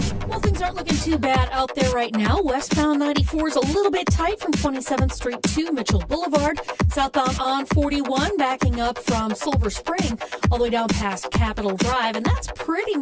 Well, things aren't looking too bad out there right now. Westbound 94 is a little bit tight from 27th Street to Mitchell Boulevard. Southbound on 41 backing up from Silver Spring all the way down past Capitol Drive. And that's pretty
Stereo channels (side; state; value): both; identical; correlation 1.00